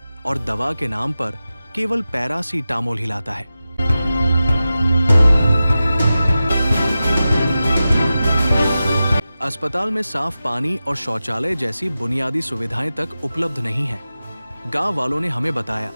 और दवा के नाम पर केवल पैरासीटामोल हिलाता है। अस्पताल में साफ पानी और शौचालय जैसी बुनियादी सुविधाएं तक उपलब्ध नहीं है। गांव वालों ने हमें बताया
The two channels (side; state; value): both; inverted; correlation -0.93